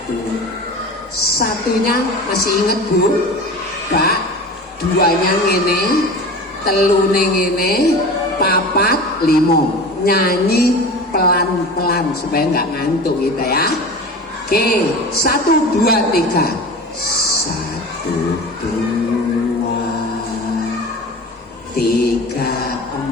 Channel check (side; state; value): both; normal; correlation 0.34